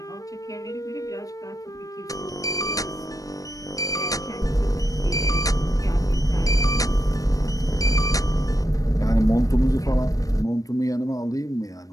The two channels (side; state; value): right; late; 0.17 ms